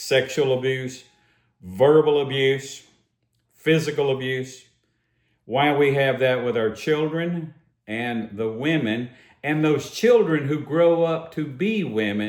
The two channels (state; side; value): identical; both; correlation 1.00